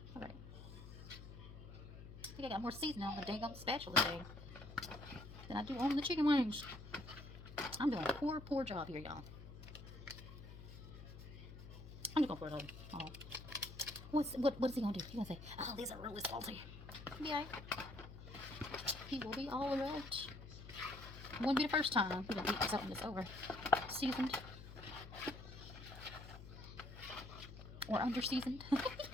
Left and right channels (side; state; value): left; noise; hum, 13 dB below the sound